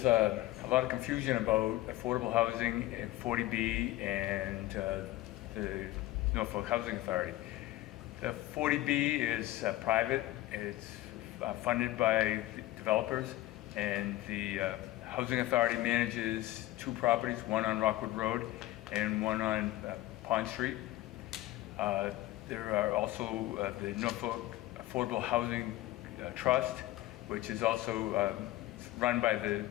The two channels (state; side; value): quieter; right; 16.6 dB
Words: a lot of confusion about affordable housing and 40B and the Norfolk Housing Authority. The 40B is private. It's funded by developers, and the Housing Authority manages two properties, one on Rockwood Road and one on Pond Street. There are also the Norfolk Affordable Housing Trust, which is also run by